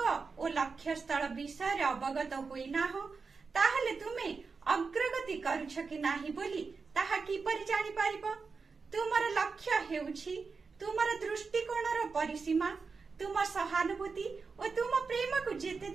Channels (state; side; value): quieter; left; 4.8 dB